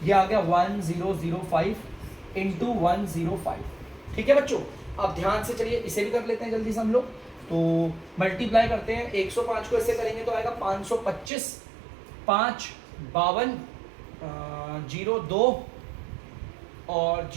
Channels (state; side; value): drops out; left; at 11.3 s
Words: ये आ गया 1005 इंटू 105। ठीक है बच्चों, अब ध्यान से चलिए इसे भी कर लेते हैं जल्दी से हम लोग, तो मल्टीप्लाई करते हैं, 105 को ऐसे करेंगे तो आएगा 525, 5 52 02 और